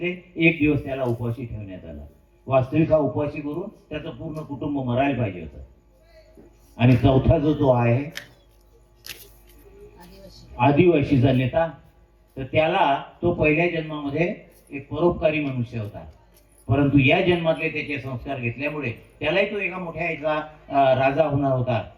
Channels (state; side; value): identical; both; correlation 1.00